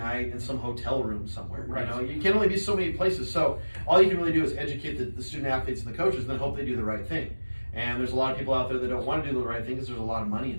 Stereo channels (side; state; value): both; inverted; correlation -1.00